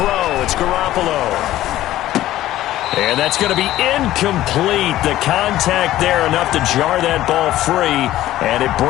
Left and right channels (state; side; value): quieter; right; 14.5 dB